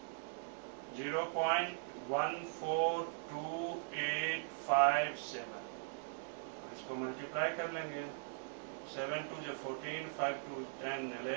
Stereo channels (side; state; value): left; silent; 51 dB below the other